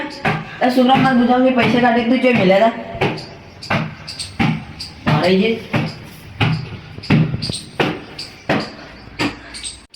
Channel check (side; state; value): both; identical; correlation 1.00